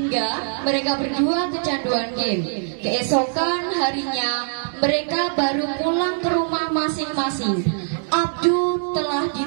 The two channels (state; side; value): silent; left; digital silence